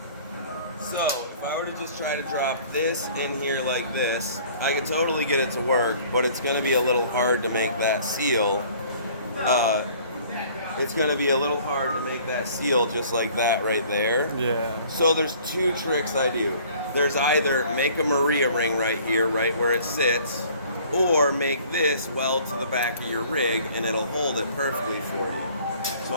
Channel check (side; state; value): both; inverted; correlation -0.53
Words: So, if I were to just try to drop this in here like this, I could totally get it to work, but it's going to be a little hard to make that seal. it's going to be a little hard to make that seal just like that right there. Yeah. So there's two tricks I do. There's either make a Maria ring right here, right where it sits, or make this weld to the back of your rig and it'll hold it perfectly for you. So